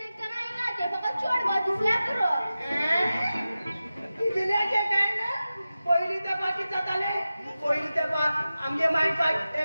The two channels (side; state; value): both; inverted; correlation -0.94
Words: करायला ना ते फक्त छोड बस दिसला करो दिल्याचे काय ना पहिली तर बाकी जाताले पहिली तर आमचे माइंड पाय